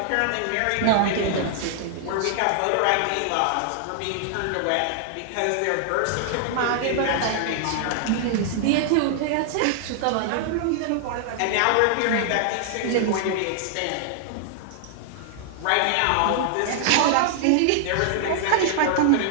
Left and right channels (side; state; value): both; different; correlation -0.01